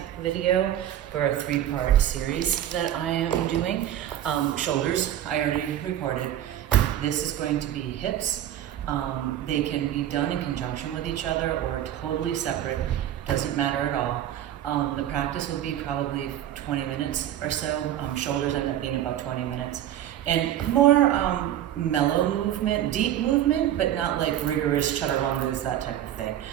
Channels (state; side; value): quieter; left; 11.6 dB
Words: video for a 3-part series that I am doing. Shoulders, I already recorded. This is going to be hips. They can be done in conjunction with each other or totally separate, doesn't matter at all. The practice will be probably 20 minutes or so. Shoulders end up being about 20 minutes. And more mellow movement, deep movement, but not like rigorous chaturangas, that type of thing.